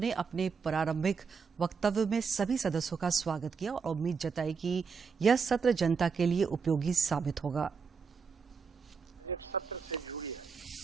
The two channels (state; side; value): quieter; left; 5.5 dB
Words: अपने प्रारंभिक वक्तव्य में सभी सदस्यों का स्वागत किया और उम्मीद जताई कि यह सत्र जनता के लिए उपयोगी साबित होगा। बजट सत्र से जुड़ी है